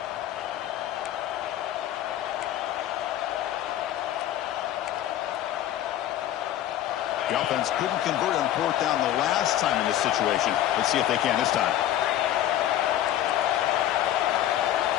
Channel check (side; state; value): right; quieter; 12.4 dB